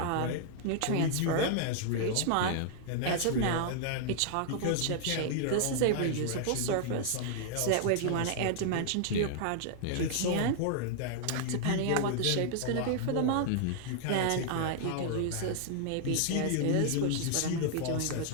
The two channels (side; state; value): both; different; correlation -0.01